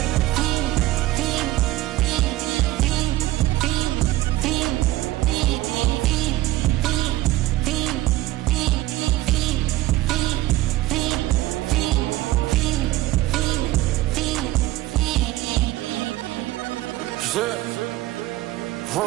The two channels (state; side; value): quieter; left; 17.0 dB